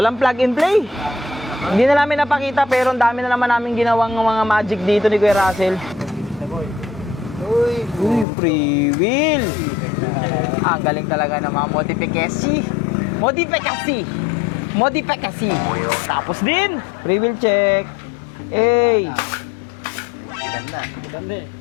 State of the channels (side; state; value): right; drops out; at 8.2 s